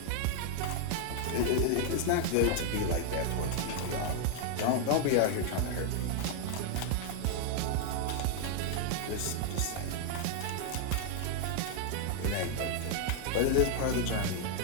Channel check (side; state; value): both; different; correlation 0.00